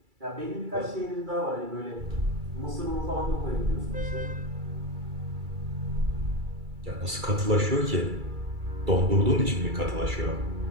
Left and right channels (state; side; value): late; left; 2.3 ms